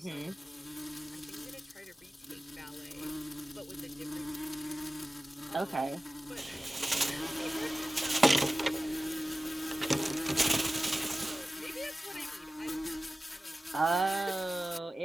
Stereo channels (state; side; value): normal; both; correlation 0.96